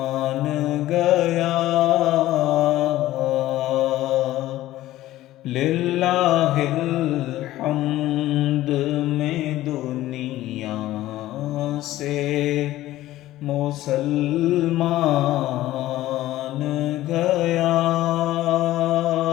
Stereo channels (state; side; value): quieter; right; 15.3 dB